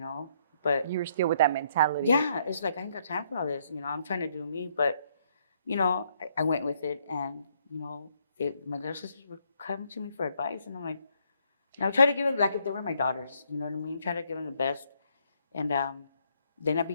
But you were still with that mentality. Yeah, it's like I ain't got time for all this. I'm trying to do me, but I went with it, and my little sisters would come to me for advice, and I'm like, I would try to give them, like if they were my daughters, you know what I mean? Try to give them the best, and then I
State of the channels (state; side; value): inverted; both; correlation -0.71